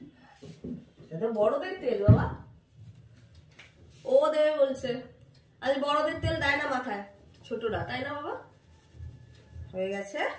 এটা বড়দের তেল বাবা, ও দেবে বলছে। আজ বড়দের তেল দেয় না মাথায়, ছোটরা, তাই না বাবা? হয়ে গেছে।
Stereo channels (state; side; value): identical; both; correlation 1.00